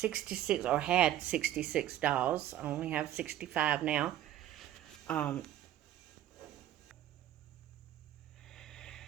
or had 66 dolls. I only have 65 now.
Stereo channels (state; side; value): quieter; left; 12.3 dB